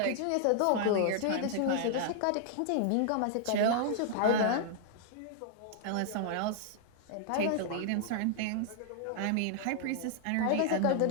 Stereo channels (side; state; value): both; different; correlation -0.01